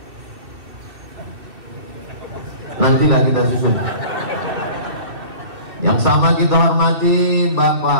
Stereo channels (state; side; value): late; left; 2.6 ms